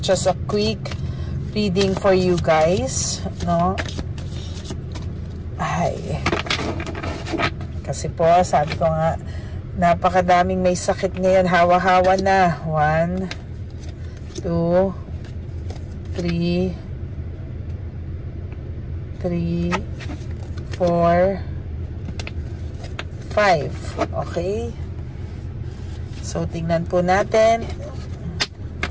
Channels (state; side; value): identical; both; correlation 1.00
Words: a quick reading for you guys, no? Ay, kasi po, sabi ko nga, napakadaming may sakit ngayon. Hawa-hawa na. 1, 2, 3, 4, 5. Okay? So, tingnan po natin.